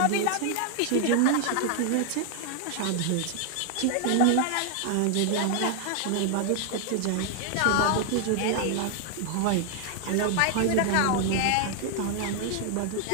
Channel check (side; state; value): both; different; correlation 0.00